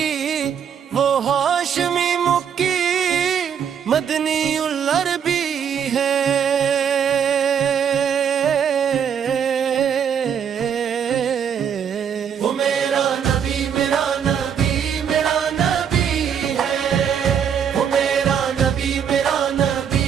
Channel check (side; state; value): left; quieter; 8.0 dB